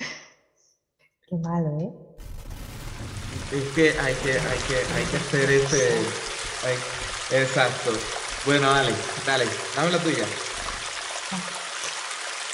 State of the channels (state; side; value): identical; both; correlation 1.00